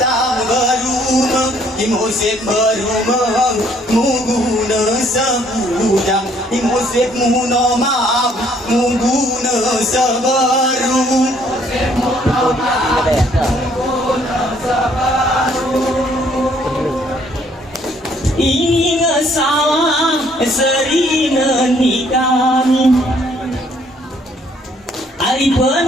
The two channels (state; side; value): normal; both; correlation 0.64